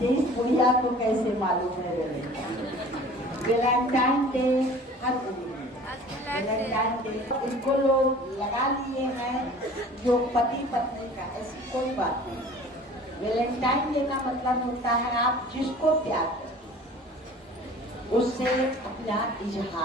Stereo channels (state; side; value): normal; both; correlation 0.45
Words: इस बुढ़िया को कैसे मालूम है वैलेंटाइन डे हर वैलेंटाइन डे इनको लोग लगा लिए हैं जो पति पत्नी का, ऐसी कोई बात नहीं। वैलेंटाइन डे का मतलब होता है आप जिसको प्यार करें उससे अपना